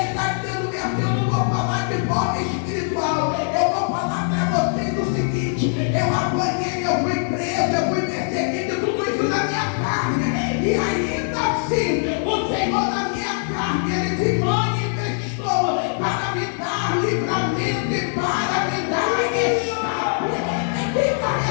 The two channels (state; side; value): silent; right; 64 dB below the other